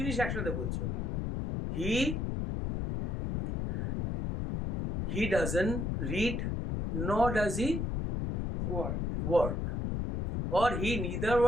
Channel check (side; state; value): left; noise; rumble, 1 dB below the sound